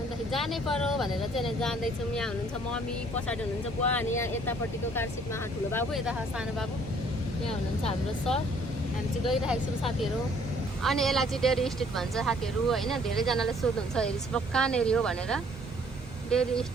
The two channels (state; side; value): normal; both; correlation 0.60